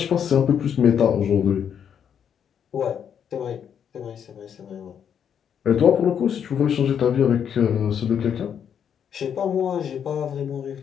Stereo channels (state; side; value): quieter; right; 8.3 dB